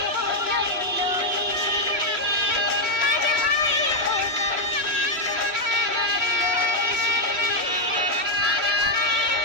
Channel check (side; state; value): left; late; 3.1 ms